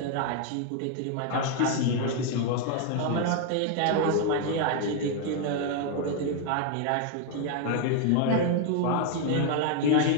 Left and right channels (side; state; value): both; different; correlation 0.00